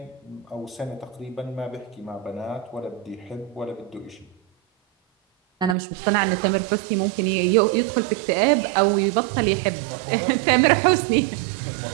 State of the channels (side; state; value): left; drops out; at 5.8 s